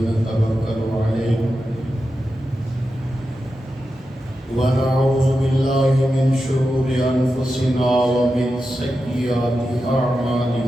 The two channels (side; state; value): both; normal; correlation 0.90